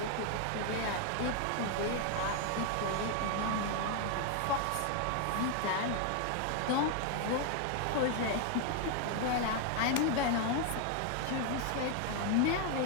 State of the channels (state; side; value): different; both; correlation 0.00